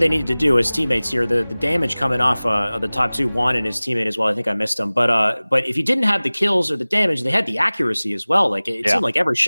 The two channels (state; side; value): inverted; both; correlation -0.99